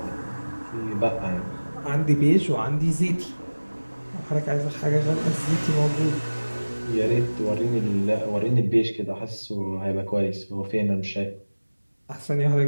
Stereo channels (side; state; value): both; inverted; correlation -1.00